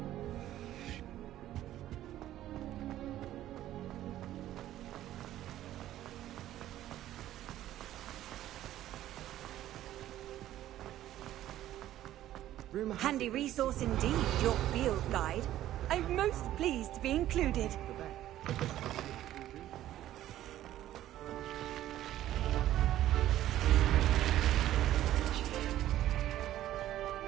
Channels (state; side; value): quieter; left; 13.2 dB